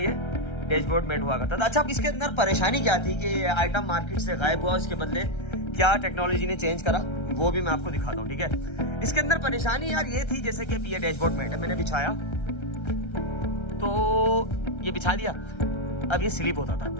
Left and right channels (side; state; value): right; late; 1.3 ms